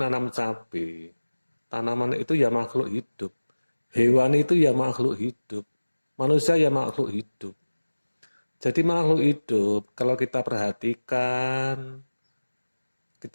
cabai. Tanaman itu ya makhluk hidup. Hewan itu ya makhluk hidup. Manusia ya makhluk hidup. Jadi makhluk hidup, kalau kita perhatikan,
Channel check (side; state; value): both; inverted; correlation -1.00